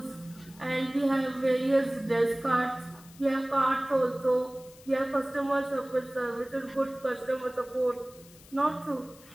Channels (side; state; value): left; noise; hiss, 23 dB below the sound